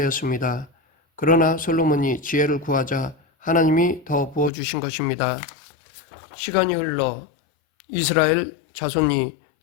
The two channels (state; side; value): drops out; right; at 4.5 s